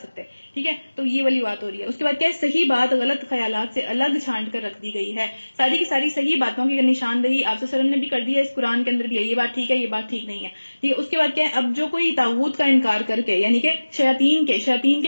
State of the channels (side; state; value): both; inverted; correlation -1.00